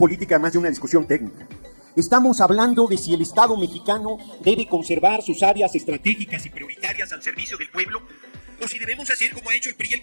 más de una discusión técnica. Estamos hablando de si el Estado mexicano debe conservar sus áreas estratégicas y prioritarias al servicio del pueblo, o si debemos hacer como ha hecho el PRI y el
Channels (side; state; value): both; inverted; correlation -1.00